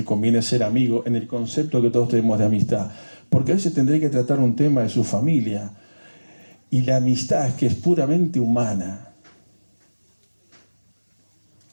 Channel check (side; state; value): both; inverted; correlation -1.00